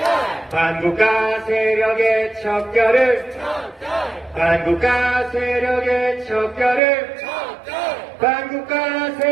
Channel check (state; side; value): drops out; left; at 6.8 s